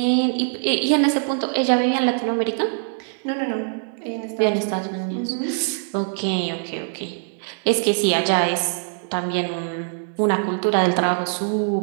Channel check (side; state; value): left; silent; digital silence